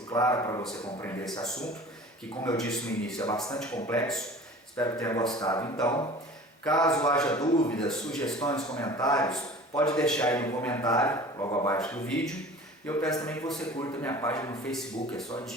clara para você compreender esse assunto, que, como eu disse no início, é bastante complexo. Espero que tenha gostado. Então, caso haja dúvidas, sugestões, comentários, pode deixar aí no comentário, logo abaixo do vídeo. E eu peço também que você curta minha página no Facebook, é só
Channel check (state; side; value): normal; both; correlation 0.42